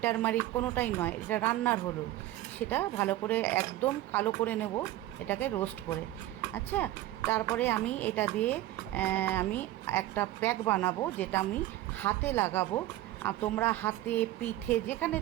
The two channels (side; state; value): left; quieter; 15.3 dB